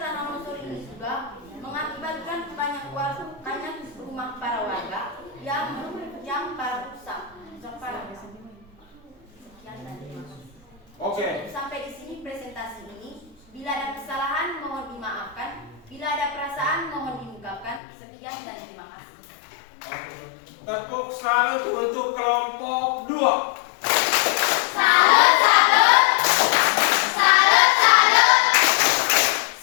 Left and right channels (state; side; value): drops out; right; at 17.8 s